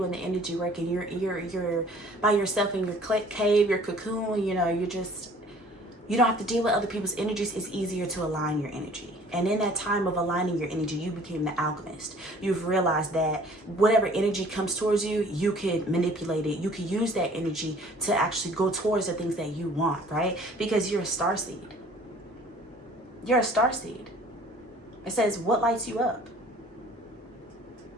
the energy work, and you're by yourself in your cave, your cocoon, you know, you don't have to deal with other people's energies. It's easier to align your energy. And in that time of aligning your energy, you became the alchemist. You've realized that whatever energy comes towards you, you could manipulate it. You could use that energy to actually go towards the things that you want, right? Because you're a starseed. You're a starseed. It says, what lights you up?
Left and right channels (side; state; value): both; normal; correlation 0.52